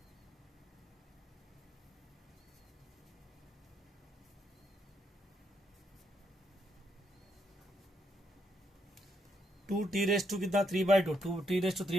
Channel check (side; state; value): both; normal; correlation 0.77